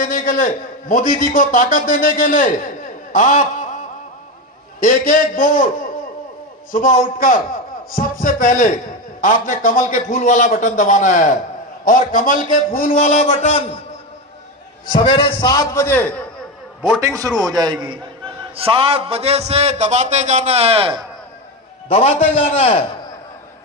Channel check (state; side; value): normal; both; correlation 0.16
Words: के लिए, मोदी जी को ताकत देने के लिए आप एक एक वोट सुबह उठकर सबसे पहले आपने कमल के फूल वाला बटन दबाना है। और कमल के फूल वाला बटन सवेरे 7 बजे वोटिंग शुरू हो जाएगी। 7 बजे से दबाते जाना है, दबाते जाना है।